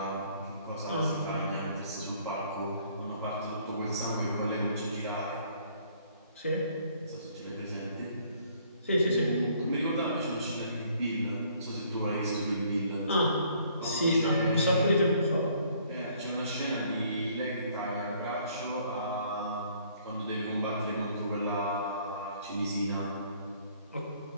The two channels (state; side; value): inverted; both; correlation -0.62